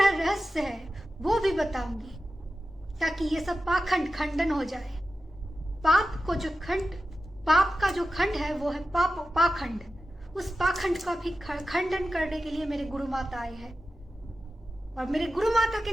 रहस्य है वो भी बताऊंगी, ताकि ये सब पाखंड खंडन हो जाए। पाप का जो खंड है वो है पाखंड। उस पाखंड का भी खंडन करने के लिए मेरे गुरु माता आए हैं, और मेरे गुरु माता के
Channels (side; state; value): both; normal; correlation 0.93